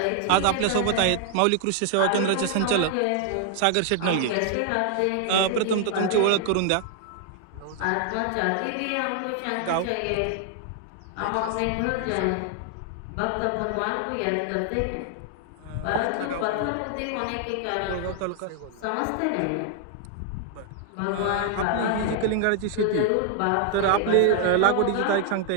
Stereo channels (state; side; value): different; both; correlation 0.00